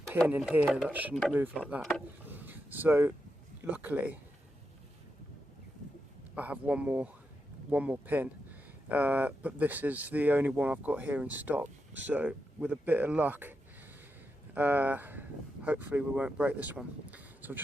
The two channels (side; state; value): both; normal; correlation 0.86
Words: pin in here that shouldn't move like that. So luckily I have one more pin, but this is the only one I've got here in stock. So with a bit of luck, hopefully we won't break this one. So I've